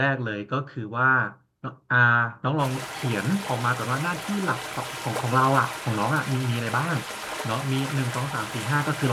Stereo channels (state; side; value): identical; both; correlation 1.00